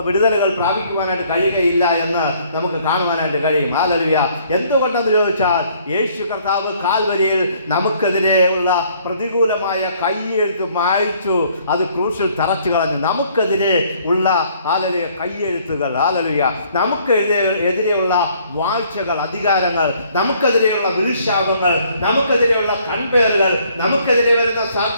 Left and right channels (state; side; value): inverted; both; correlation -0.62